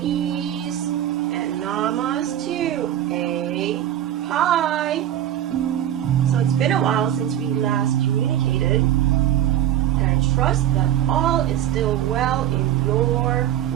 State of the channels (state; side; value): quieter; left; 11.5 dB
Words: and namaste. Hi. So it's been a while since we last communicated, and I trust that all is still well in your